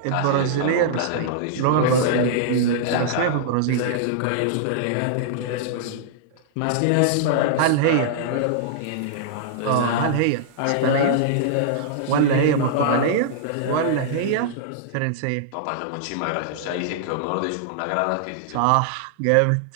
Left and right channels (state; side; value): different; both; correlation -0.02